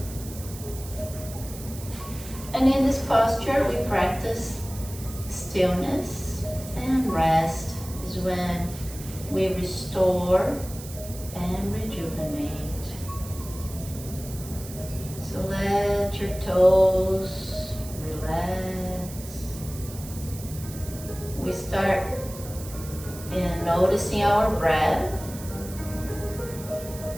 And in this posture, we practice stillness, and rest is when we restore and rejuvenate. So let your toes relax. We start in noticing our breath,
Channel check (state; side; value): noise; right; hiss, 14 dB below the sound